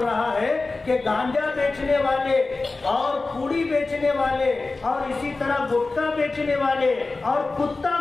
ہے کہ گانجا بیچنے والے اور پوڑی بیچنے والے اور اسی طرح گٹکا بیچنے والے اور کتا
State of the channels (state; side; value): quieter; right; 3.6 dB